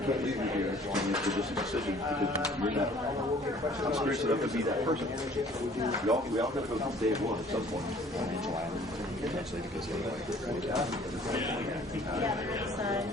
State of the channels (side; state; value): both; normal; correlation 0.54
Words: can't leave you here for just a decision because you're not experienced enough to be that person. We all got to go to day one at some point.